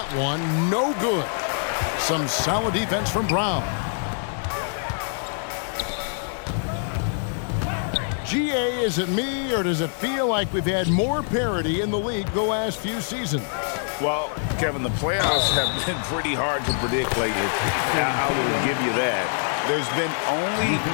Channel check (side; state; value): right; silent; 62 dB below the other